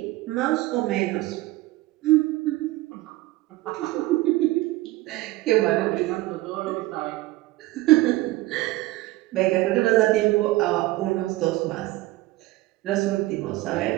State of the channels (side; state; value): left; quieter; 18.6 dB